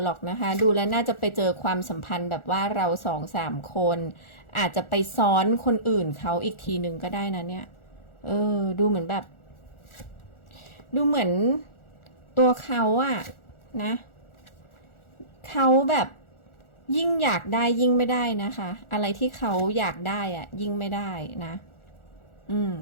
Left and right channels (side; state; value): right; late; 1.4 ms